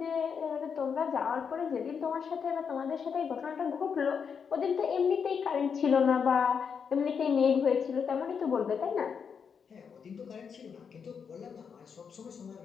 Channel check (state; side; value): quieter; right; 6.5 dB